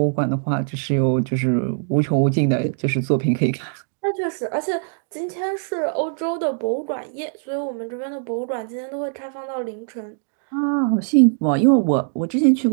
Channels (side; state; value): left; silent; digital silence